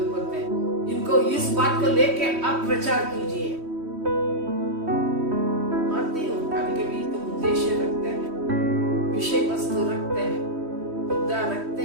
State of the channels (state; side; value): late; left; 3.1 ms